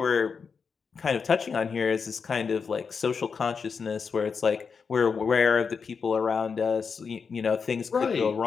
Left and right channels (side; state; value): right; quieter; 5.7 dB